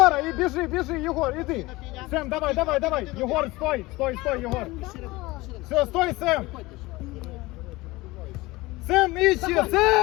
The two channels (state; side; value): quieter; right; 20.9 dB